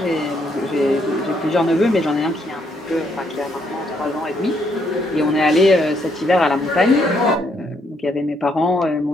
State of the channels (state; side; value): normal; both; correlation 0.73